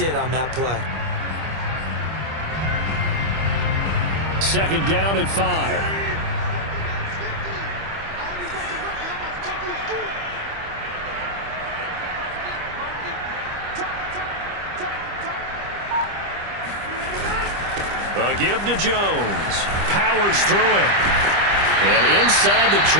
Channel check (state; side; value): late; left; 25 ms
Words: on that play. Second down at 5. A give to Jones. Powers through it. And inside the